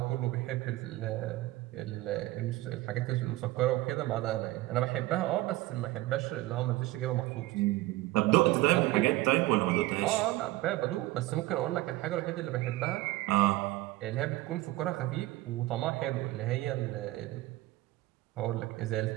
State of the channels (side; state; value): left; quieter; 17.9 dB